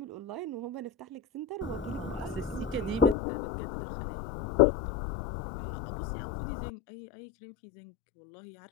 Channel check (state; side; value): drops out; right; at 3.2 s